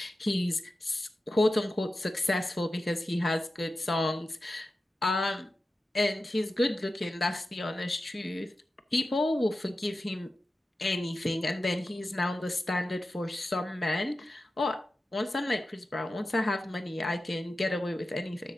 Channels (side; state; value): both; normal; correlation 0.93